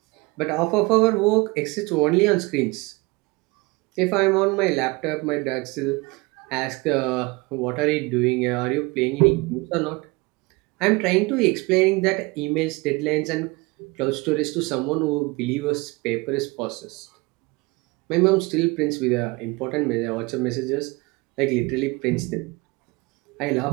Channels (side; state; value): left; quieter; 25.1 dB